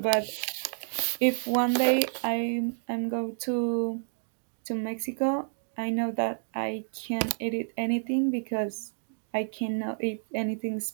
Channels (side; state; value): left; silent; digital silence